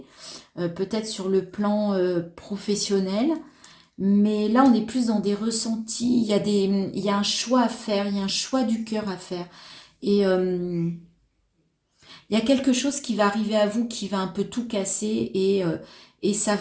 Peut-être sur le plan professionnel. Mais là, on est plus dans des ressentis. Il y a un choix à faire. Il y a un choix du cœur à faire. Et il y a quelque chose qui va arriver à vous qui va un peu tout casser et ça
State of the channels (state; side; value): identical; both; correlation 1.00